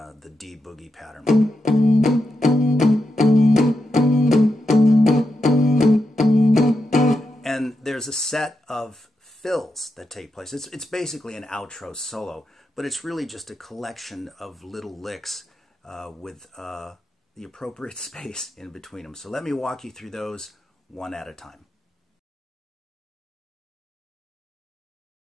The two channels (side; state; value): both; normal; correlation 0.86